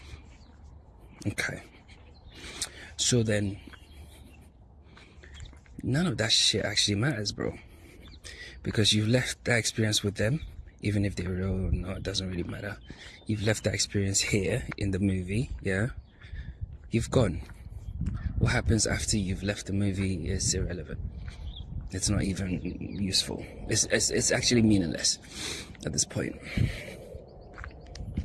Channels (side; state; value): both; identical; correlation 1.00